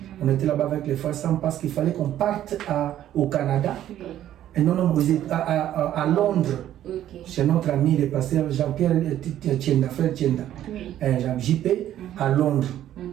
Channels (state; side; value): quieter; left; 12.0 dB